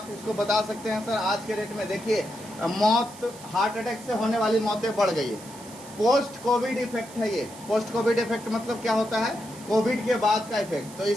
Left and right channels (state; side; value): noise; right; hiss, 18 dB below the sound